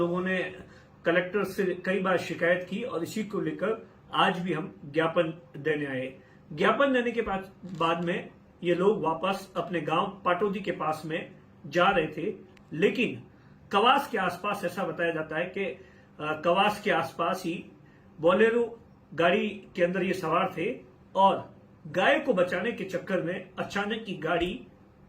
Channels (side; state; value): both; identical; correlation 1.00